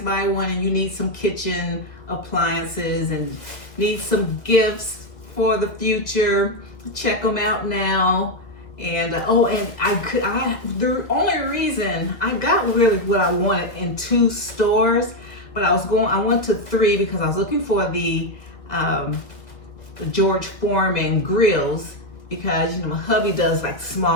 by one and you need some kitchen appliances and need some gifts for the future, check them out now. And oh, and the only reason I got really what I wanted in 2 stores, but I went to 3 because I was looking for the George Foreman grills, because my hubby does like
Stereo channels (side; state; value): right; late; 2.1 ms